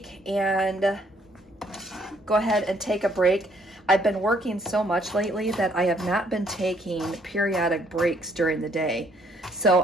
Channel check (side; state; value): both; normal; correlation 0.66